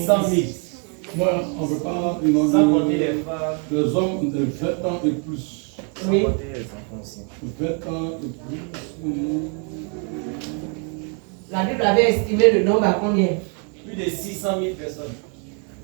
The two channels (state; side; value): quieter; left; 39.6 dB